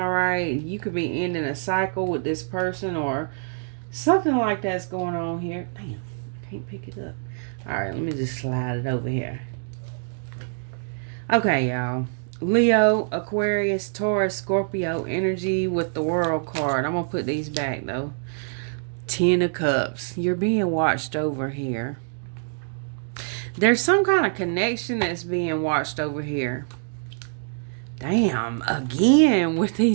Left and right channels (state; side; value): silent; left; digital silence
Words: right? You could be ending a cycle with this person or something like that's going on here. Damn, I can't pick it up. All right, let me just slide it over here. Okay, y'all. Leo, Aquarius, Taurus, Scorpio energy with the World card. I'm going to put these back, though. 10 of Cups. You're being watched over here. There's some kind of connection that's being watched over here. Damn, again with